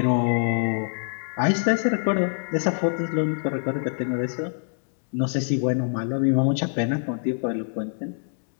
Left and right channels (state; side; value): silent; right; 62 dB below the other